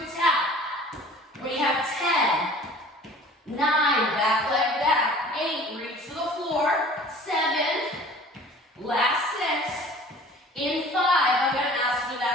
tap. We have 10, 9, back leg back, 8, reach to the floor, 7, last 6. In 5, I'm going to ask for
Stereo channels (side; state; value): both; normal; correlation 0.46